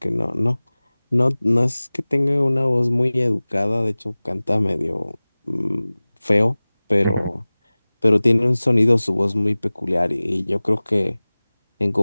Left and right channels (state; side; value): inverted; both; correlation -0.99